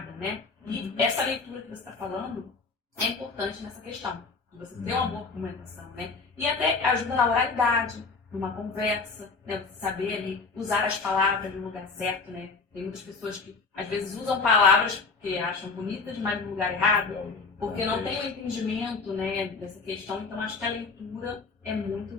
né? E essa leitura que você está falando é importante nessa questão. De você ter uma boa argumentação, né? E até ajuda na oralidade, numa conversa, né? Você saber ali usar as palavras no lugar certo, né? Tem muitas pessoas que às vezes usam palavras que acham bonitas, mas no lugar errado, porque não tem o entendimento, né, dessa questão. Então acho que a leitura é muito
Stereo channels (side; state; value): right; quieter; 4.3 dB